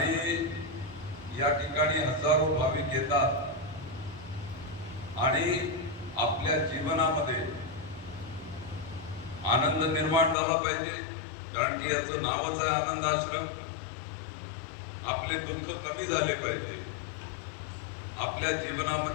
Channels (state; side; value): drops out; right; at 10.4 s